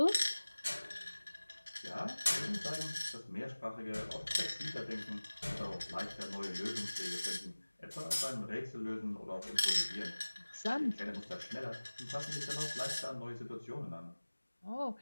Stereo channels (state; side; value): inverted; both; correlation -1.00